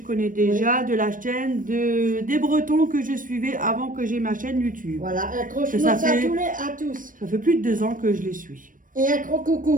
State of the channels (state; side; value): late; left; 0.39 ms